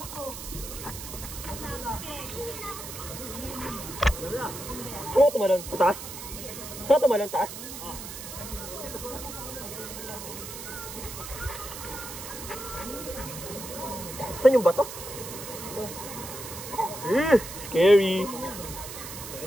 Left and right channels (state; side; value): noise; right; hiss, 10 dB below the sound